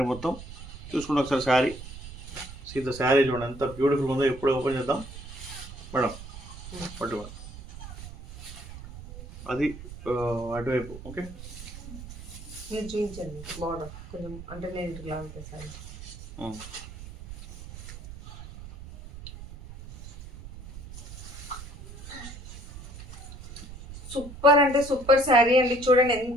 మొత్తం. చూసుకుంటే ఒకసారి శారీ సీత శారీ చూడండి ఎంత బ్యూటిఫుల్ ఉందో. ఎప్పుడు ఓపెన్ చేద్దాం మేడం, పట్టుకోండి అది అటువైపు. ఓకే మీరు చూపించండి బార్డర్ కొంచెం, అంటే నేను ఇట్లా ఉంటుంది సారీ. సూపర్ అంటే సూపర్ శారీ అండి. చూడండి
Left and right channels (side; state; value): right; noise; rumble, 14 dB below the sound